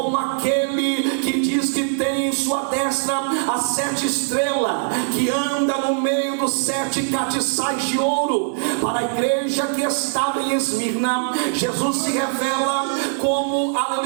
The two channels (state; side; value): silent; left; digital silence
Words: aquele que diz que tem em sua destra as 7 estrelas, que anda no meio dos 7 castiçais de ouro. Para a igreja que estava em Esmirna, Jesus se revela como,